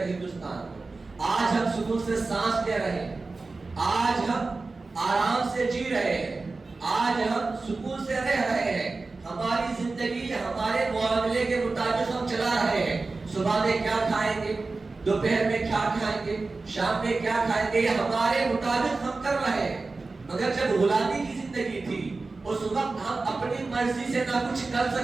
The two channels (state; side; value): quieter; left; 3.7 dB